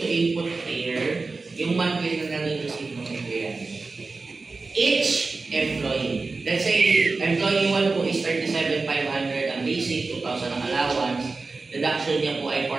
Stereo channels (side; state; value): left; quieter; 3.9 dB